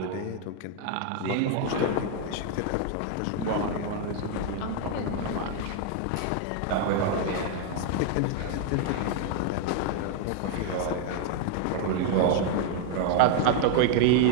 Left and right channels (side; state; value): both; different; correlation 0.00